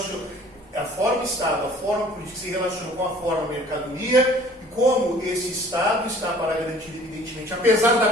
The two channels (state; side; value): normal; both; correlation 0.52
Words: a forma Estado, a forma política se relaciona com a forma mercadoria e como esse Estado está para garantir, evidentemente, apesar